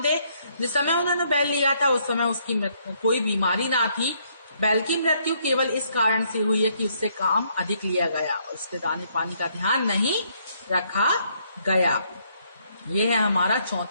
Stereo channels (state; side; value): inverted; both; correlation -0.70